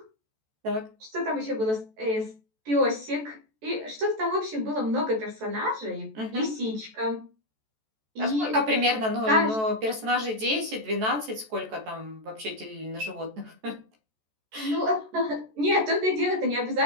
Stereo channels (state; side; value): late; left; 14 ms